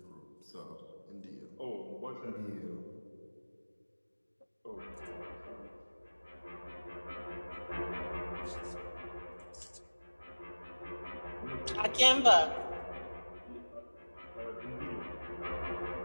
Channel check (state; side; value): inverted; both; correlation -1.00